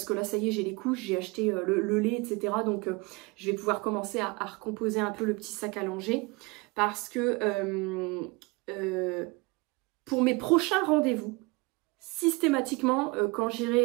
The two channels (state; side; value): quieter; left; 26.1 dB